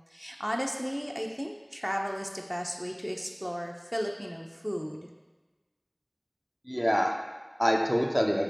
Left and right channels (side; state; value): both; identical; correlation 1.00